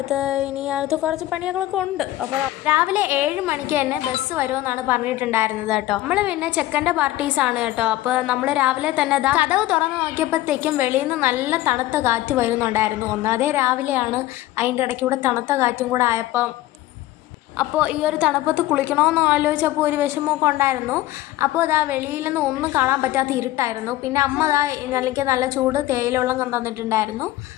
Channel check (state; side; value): quieter; right; 15.9 dB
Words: ഇനി അടുത്ത് കുറച്ച് പണികളൊക്കെ ഉണ്ട്. അപ്പോൾ രാവിലെ 7 മണിക്ക് തന്നെ ബസ് വരുമെന്നാണ് പറഞ്ഞിട്ടുണ്ടായിരുന്നത് കേട്ടോ. നമ്മൾ പിന്നെ ചെക്കൻ്റെ പാർട്ടീസാണ് കേട്ടോ. അപ്പോൾ നമ്മൾ രാവിലെ തന്നെ കതവ് തുറന്ന് നോക്കിയപ്പോഴത്തേക്കും വെളിയിൽ നിന്ന് നല്ല തണുത്ത കാറ്റ് വരുന്നുണ്ടായിരുന്നു. ഒന്നാമതേ രാവിലെയാണ്, അതിൻ്റെ ഇടയ്ക്കൂടെ തണുത്ത കാറ്റും കൂടെ അപ്പോൾ ഈ ഒരു തണുപ്പത്ത് കുളിക്കണമെന്ന് ആലോചിച്ചപ്പോൾ ഒരു വിഷമമൊക്കെ ഉണ്ടായിരുന്നു. അപ്പോൾ വെളിയിൽ നിന്ന് ഒന്നും കാണാൻ പറ്റാത്ത ഇരുട്ടായിരുന്നു. പിന്നെ അമ്മ എനിക്ക് നല്ല ചൂട് തേയില വെള്ളം തന്നിട്ടുണ്ടായിരുന്നു.